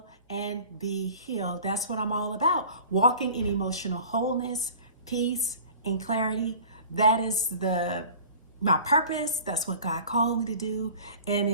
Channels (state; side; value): inverted; both; correlation -0.43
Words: and Be Healed. That's what I'm all about, walking in emotional wholeness, peace, and clarity. That is my purpose. That's what God called me to do. And